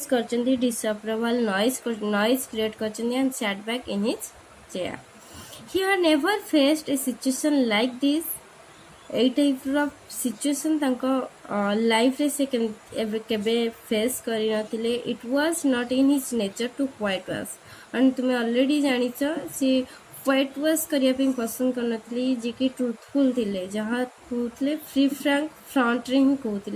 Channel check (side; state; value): both; identical; correlation 1.00